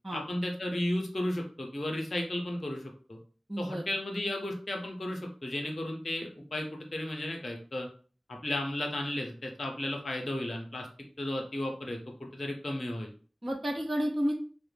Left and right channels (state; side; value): normal; both; correlation 0.95